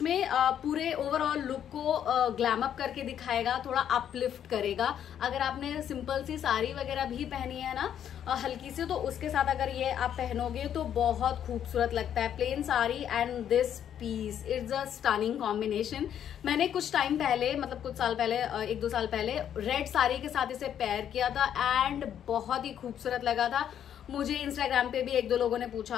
में पूरे ओवरऑल लुक को ग्लैम अप करके दिखाएगा, थोड़ा अपलिफ्ट करेगा. अगर आपने सिंपल सी साड़ी वगैरह भी पहनी है ना हल्की सी, तो उसके साथ अगर ये आप पहनोगे तो बहुत खूबसूरत लगता है. Plain sari and this piece, it's a stunning combination. मैंने कुछ टाइम पहले, मतलब कुछ साल पहले, 1-2 साल पहले रेड साड़ी के साथ इसे पेयर किया था एंड बहुत ही खूबसूरत लगा था. मुझे इंस्टाग्राम पे भी 1-2 लोगों ने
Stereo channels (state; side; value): quieter; right; 9.6 dB